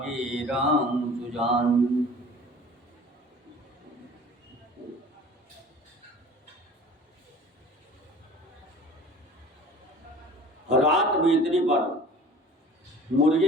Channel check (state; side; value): normal; both; correlation 0.43